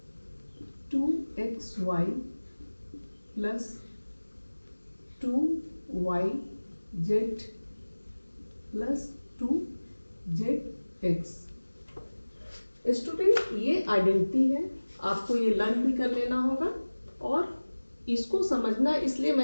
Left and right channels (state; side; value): inverted; both; correlation -1.00